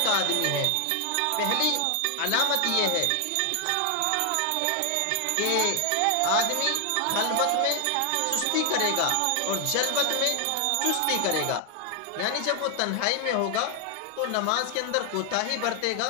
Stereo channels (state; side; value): different; both; correlation 0.00